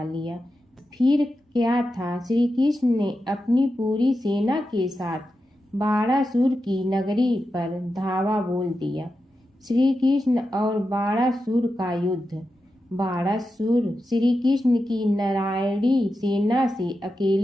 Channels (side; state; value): both; normal; correlation 0.90